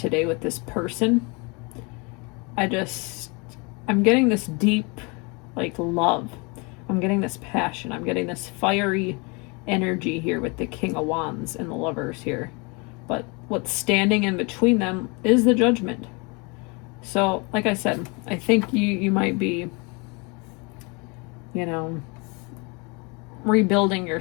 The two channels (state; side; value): quieter; right; 29.9 dB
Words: with this person. I'm getting this deep like love. I'm getting this passion. I'm getting this fiery energy here with the King of Wands and the Lovers here. But what's standing in between them is the Judgment. So, like I said, I think you might be, rebuilding